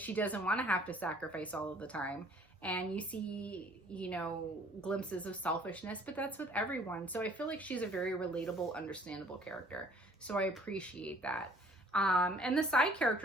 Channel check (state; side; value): normal; both; correlation 0.56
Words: doesn't want to have to sacrifice all of the time. And you see, you know, glimpses of selfishness, but that's with everyone. So I feel like she's a very relatable, understandable character. So I appreciate that. And the side